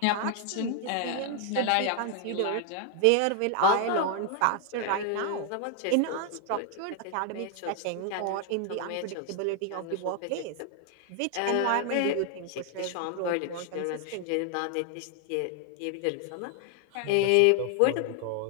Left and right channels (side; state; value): both; different; correlation 0.00